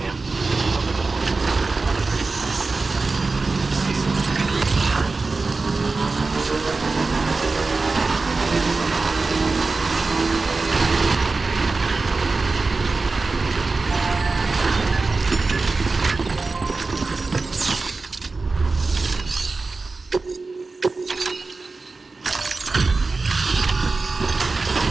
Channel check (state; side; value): quieter; left; 3.8 dB